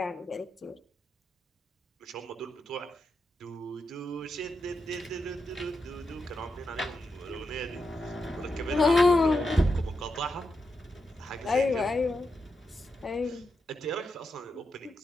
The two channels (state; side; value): normal; both; correlation 0.86